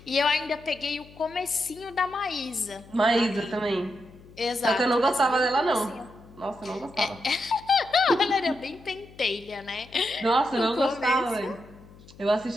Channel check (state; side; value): noise; left; hum, 22 dB below the sound